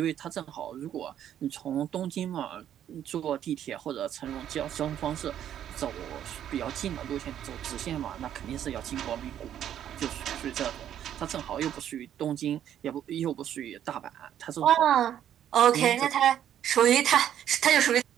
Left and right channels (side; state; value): left; quieter; 10.4 dB